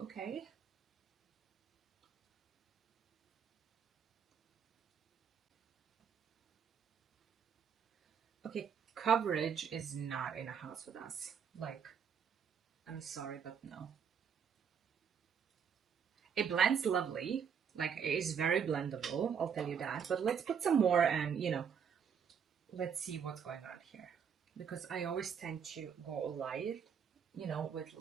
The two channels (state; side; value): quieter; left; 7.2 dB